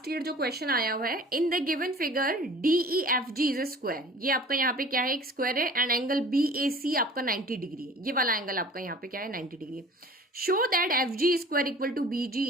ईयर जो क्वेश्चन आया हुआ है, इन the given figure DEFG is a square. ये आपका यहाँ पे क्या है, एक स्क्वायर है, एंड एंगल BAC आपका 90 डिग्री है। ये वाला एंगल आपका यहाँ पे क्या है, 90 degree. Show that FG square equal to BG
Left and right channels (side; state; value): both; normal; correlation 0.45